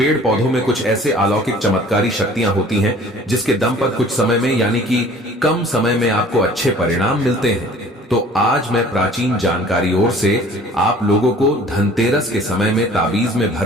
पौधों में कुछ ऐसे अलौकिक चमत्कारी शक्तियां होती हैं जिसके दम पर कुछ समय में, यानी कि कम समय में आपको अच्छे परिणाम मिलते हैं। तो आज मैं प्राचीन जानकारी ओर से आप लोगों को धनतेरस के समय में ताबीज में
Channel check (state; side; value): normal; both; correlation 0.50